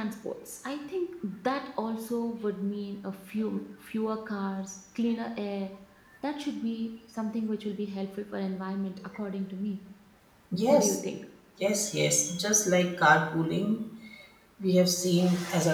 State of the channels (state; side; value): identical; both; correlation 1.00